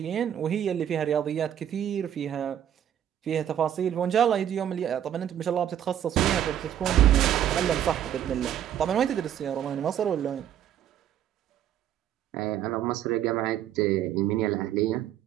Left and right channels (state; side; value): quieter; left; 10.4 dB